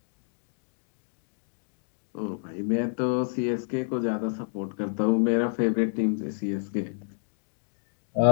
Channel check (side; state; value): right; silent; digital silence